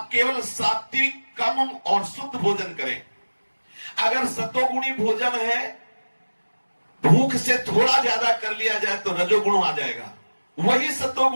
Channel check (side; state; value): both; inverted; correlation -1.00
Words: केवल सात्विक, कम और शुद्ध भोजन करें। अगर सतोगुणी भोजन है, भूख से थोड़ा ज्यादा कर लिया जाए तो रजोगुण आ जाएगा। वही